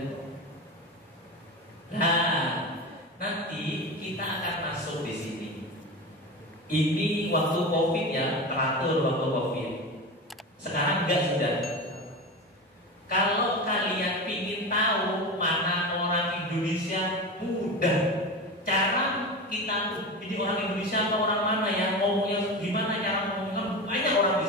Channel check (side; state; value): both; normal; correlation 0.25